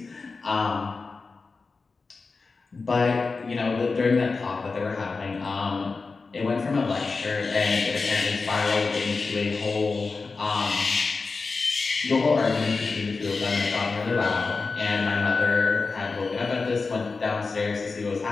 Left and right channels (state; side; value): quieter; right; 4.2 dB